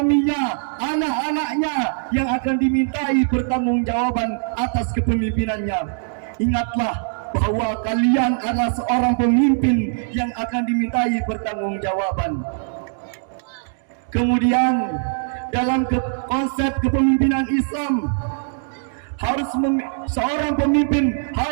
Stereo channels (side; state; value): left; silent; digital silence